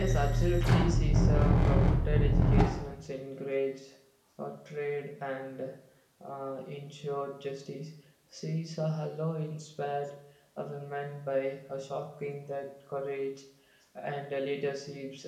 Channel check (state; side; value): identical; both; correlation 1.00